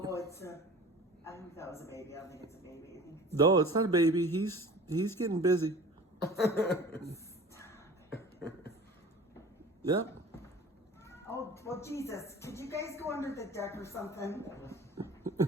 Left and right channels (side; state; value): both; normal; correlation 0.41